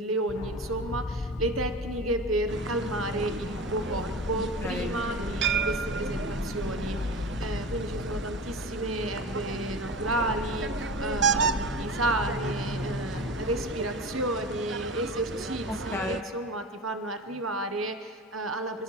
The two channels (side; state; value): both; normal; correlation 0.31